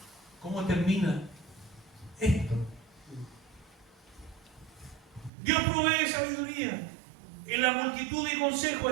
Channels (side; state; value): left; drops out; at 5.3 s